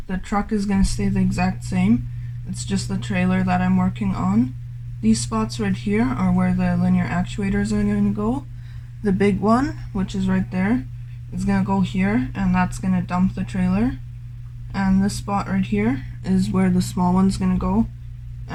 The truck is going to stay the exact same. It's just the trailer that I'm working on. These spots right here are where the linear actuators are going to go. The big one, which is right there, is going to go here, and that's going to dump the trailer. And this spot right here is where the small one's going to go.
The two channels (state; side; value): identical; both; correlation 1.00